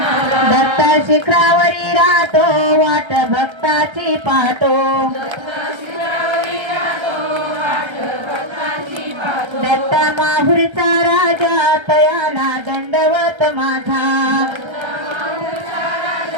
दत्त शिखरावरी राहतो वाट भक्ताची पाहतो दत्त माहुरचा राजा तयाला दंडवत माझा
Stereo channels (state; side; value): late; left; 1.3 ms